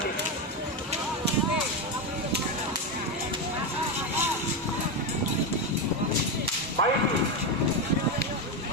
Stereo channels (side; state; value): both; normal; correlation 0.11